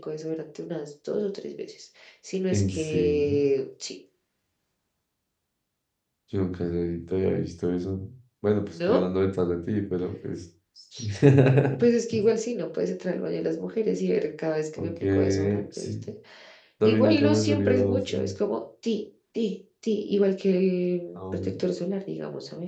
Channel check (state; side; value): identical; both; correlation 1.00